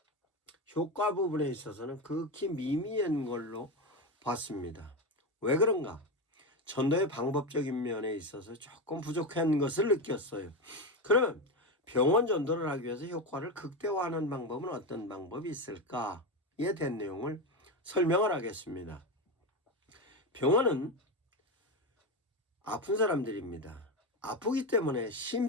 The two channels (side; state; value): both; normal; correlation 0.15